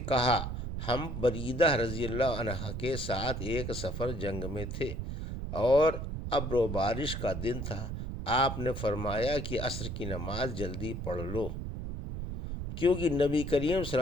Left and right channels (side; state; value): right; noise; rumble, 5 dB below the sound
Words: کہا ہم بریدہ رضی اللہ عنہ کے ساتھ ایک سفر جنگ میں تھے اور ابر و بارش کا دن تھا، آپ نے فرمایا کہ عصر کی نماز جلدی پڑھ لو، کیونکہ نبی کریم صلی